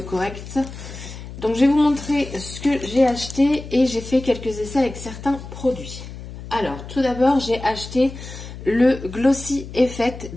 correct. Donc je vais vous montrer ce que j'ai acheté et j'ai fait quelques essais avec certains produits. Alors tout d'abord j'ai acheté le Glossy Effect.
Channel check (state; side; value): noise; left; hum, 12 dB below the sound